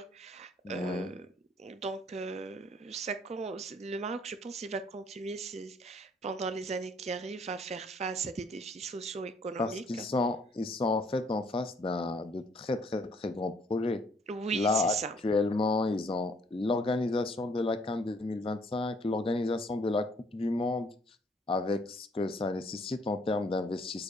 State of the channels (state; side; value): normal; both; correlation 0.63